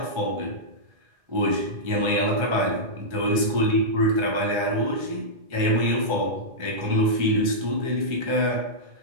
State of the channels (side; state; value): left; late; 1.4 ms